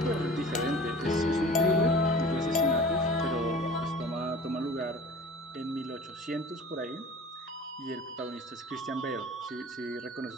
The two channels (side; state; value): both; normal; correlation 0.41